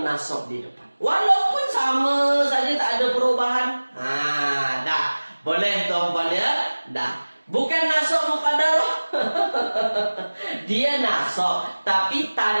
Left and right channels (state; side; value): inverted; both; correlation -1.00